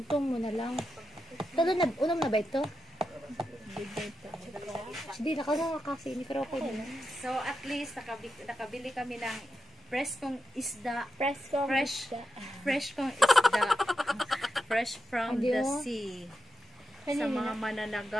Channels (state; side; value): normal; both; correlation 0.87